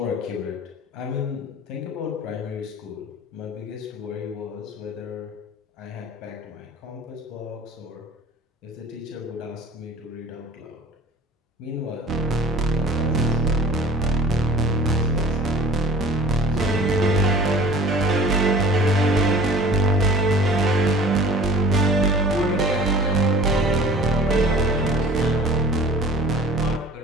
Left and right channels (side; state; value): both; normal; correlation 0.44